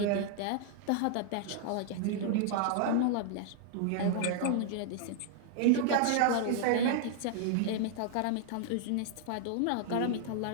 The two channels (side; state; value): both; different; correlation 0.00